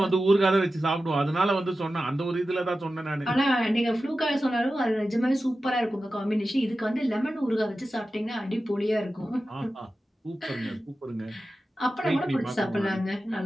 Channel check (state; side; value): normal; both; correlation 0.93